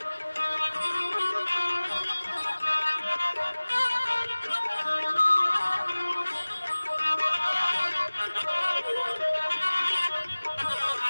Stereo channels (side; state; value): both; inverted; correlation -1.00